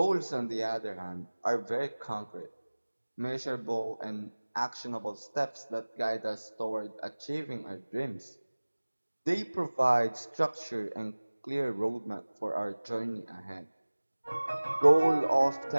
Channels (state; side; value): inverted; both; correlation -1.00